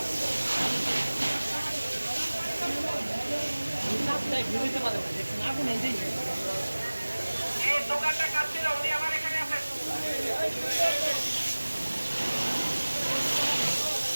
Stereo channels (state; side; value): inverted; both; correlation -1.00